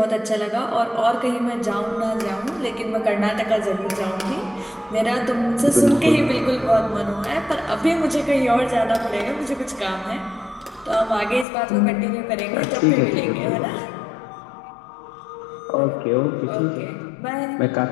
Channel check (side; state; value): right; drops out; at 11.5 s